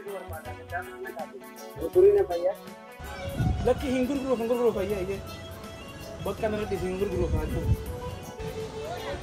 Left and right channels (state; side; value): identical; both; correlation 1.00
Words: dua berpada dan nak aku. Turunnya apa ya? Laki hinggur guru ya ye. Bahkan nanti hinggur guru aku.